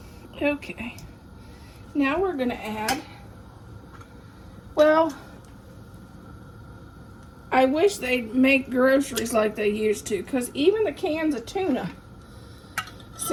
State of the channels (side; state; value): both; identical; correlation 1.00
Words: Okay, now we're going to add, well, I wish they'd make groceries like they used to, because even the cans of tuna